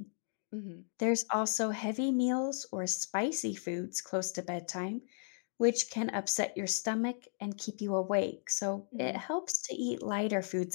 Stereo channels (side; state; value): right; silent; digital silence